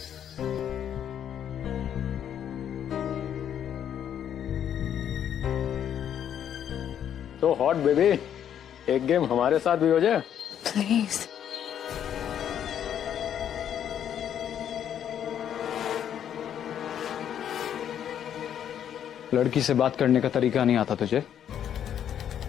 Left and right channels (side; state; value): right; quieter; 9.5 dB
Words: तो हॉट बेबी, एक गेम हमारे साथ भी हो जाए। प्लीज। लड़की से बात करने का तरीका नहीं आता तुझे?